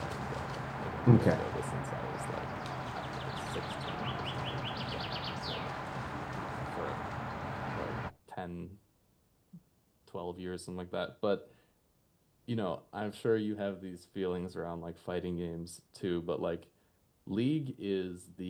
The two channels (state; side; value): identical; both; correlation 1.00